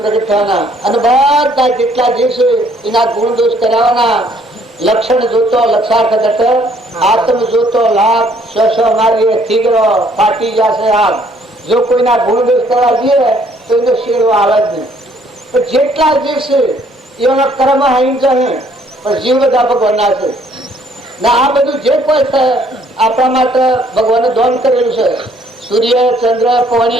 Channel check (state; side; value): normal; both; correlation 0.63